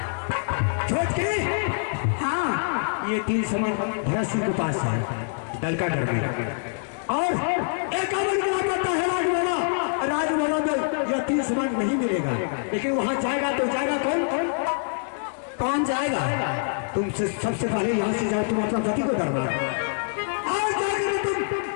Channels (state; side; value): silent; right; digital silence